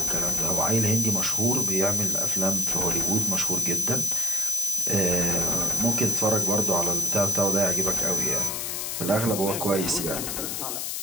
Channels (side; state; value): left; noise; hiss, 3 dB below the sound